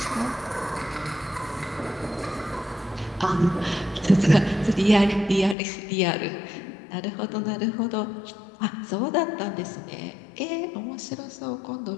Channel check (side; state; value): right; drops out; at 5.6 s